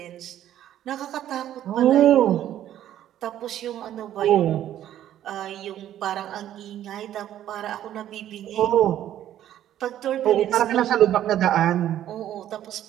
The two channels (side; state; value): left; quieter; 11.8 dB